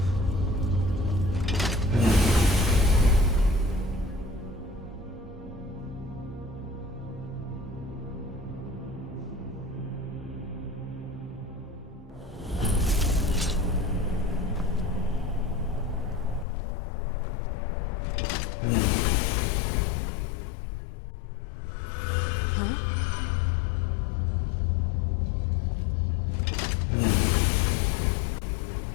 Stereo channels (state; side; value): drops out; right; at 16.4 s